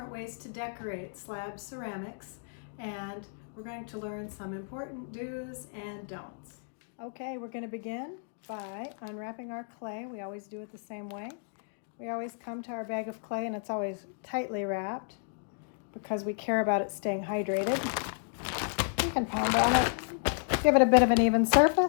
ways to decorate slab ceramics, and we're going to learn some important do's and don'ts. Okay, we're going to begin by unwrapping our clay. We always do it the same way. We always come to our bag of clay and it's always tightly wrapped because we care about it staying hydrated. You can pound on it. Give it a bit of an even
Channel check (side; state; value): right; silent; digital silence